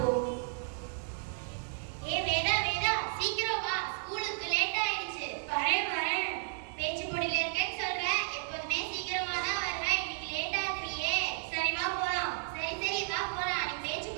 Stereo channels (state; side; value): silent; left; digital silence